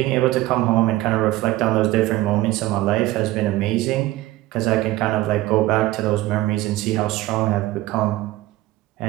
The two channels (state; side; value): quieter; left; 17.2 dB